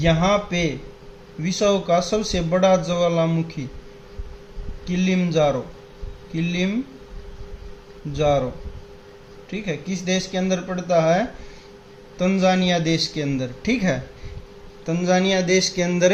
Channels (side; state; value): both; identical; correlation 1.00